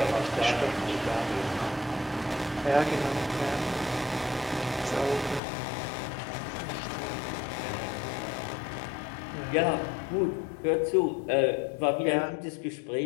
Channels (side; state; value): right; drops out; at 5.4 s